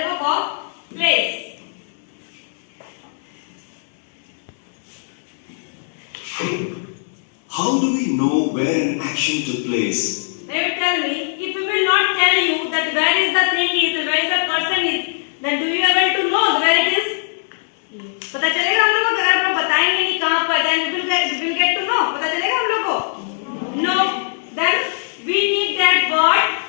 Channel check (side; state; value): right; silent; digital silence